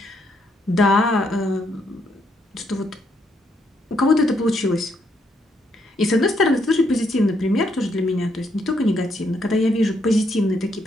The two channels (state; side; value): normal; both; correlation 0.75